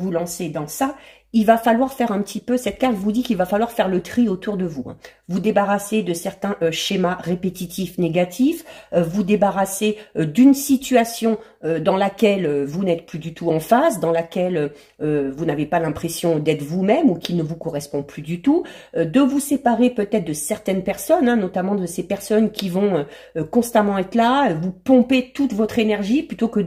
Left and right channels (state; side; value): identical; both; correlation 1.00